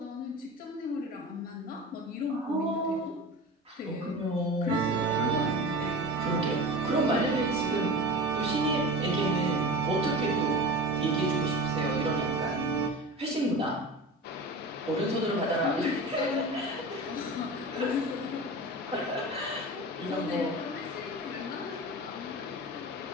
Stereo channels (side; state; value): both; normal; correlation 0.32